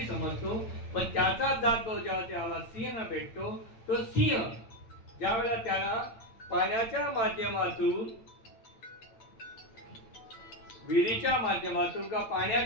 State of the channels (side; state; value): right; late; 8.9 ms